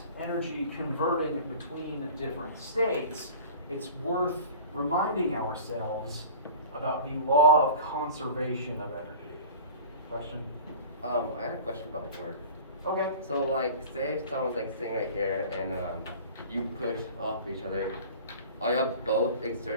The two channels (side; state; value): both; inverted; correlation -0.40